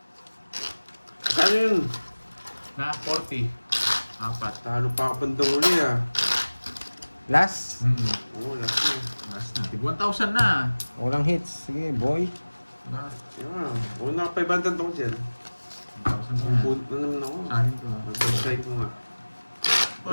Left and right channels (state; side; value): inverted; both; correlation -1.00